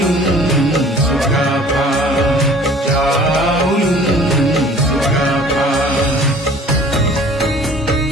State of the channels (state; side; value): normal; both; correlation 0.50